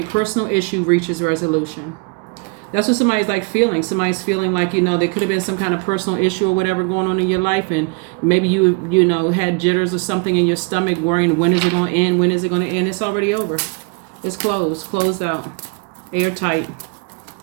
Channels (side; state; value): left; quieter; 32.6 dB